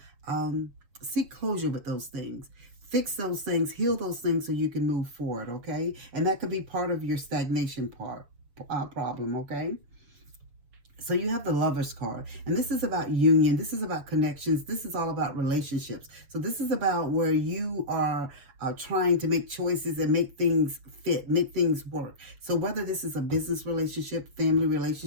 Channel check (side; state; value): left; late; 7.0 ms